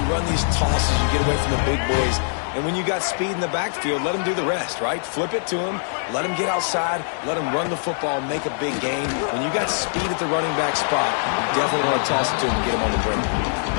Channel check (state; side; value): silent; right; digital silence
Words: run these tosses, you get away from the big boys. And when you got speed in the backfield, let them do the rest, right? Flip it to them, let them get outside, let them run the football, make a big gain. When you got speed at the running back spot, you definitely want to toss it to him and get him on the perimeter.